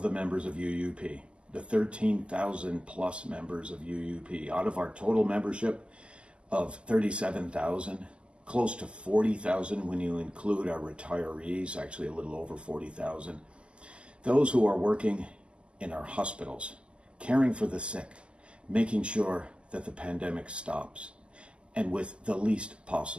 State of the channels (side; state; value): left; late; 0.052 ms